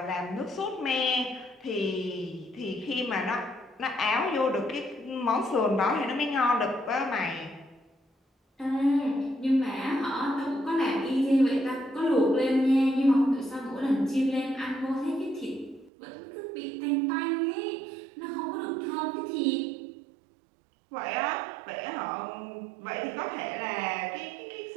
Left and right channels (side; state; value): left; drops out; at 15.9 s